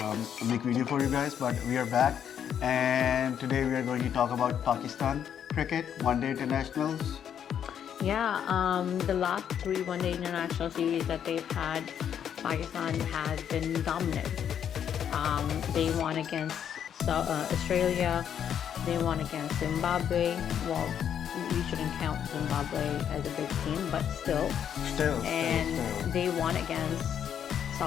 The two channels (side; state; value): right; quieter; 8.9 dB